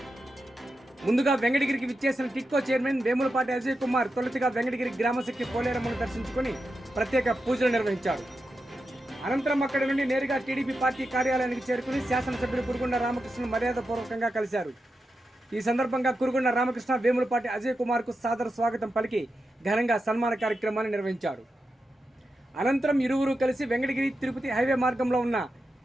ముందుగా వెంకటగిరికి విచ్చేసిన టిట్కో చైర్మన్ వేములపాటి అజయ్ కుమార్ తొలుతగా వెంకటగిరి గ్రామశక్తి పోలేరమ్మను దర్శించుకుని ప్రత్యేక పూజలు నిర్వహించారు. అనంతరం అక్కడి నుండి నేరుగా టీడీపీ పార్టీ కార్యాలయానికి చేరుకుని శాసనసభ్యులు కురుగుండ్ల రామకృష్ణను మర్యాదపూర్వకంగా కలిశారు. ఈ సందర్భంగా కురుగుండ్ల రామకృష్ణ వేములపాటి అజయ్ కుమార్కు సాదర స్వాగతం పలికి ఘనంగా సన్మాన కార్యక్రమాన్ని నిర్వహించారు. అనంతరం ఇరువురు కలిసి వెంకటగిరి తిరుపతి హైవే మార్గంలో ఉన్న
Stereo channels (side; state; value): both; normal; correlation 0.88